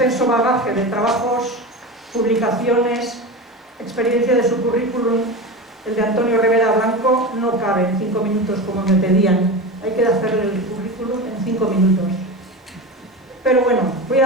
bagaje de trabajos, publicaciones, experiencia de su currículum, el de Antonio Rivera Blanco, no cabe en 5 minutos como me pedían. Hay que hacer el currículum en 5 minutos. Pero bueno, voy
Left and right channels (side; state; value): both; normal; correlation 0.25